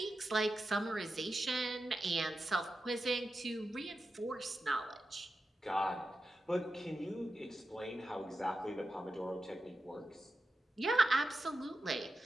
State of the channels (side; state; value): both; normal; correlation 0.91